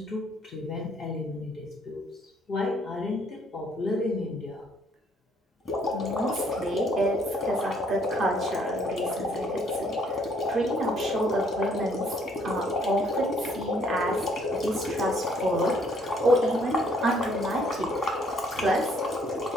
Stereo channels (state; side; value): normal; both; correlation 0.65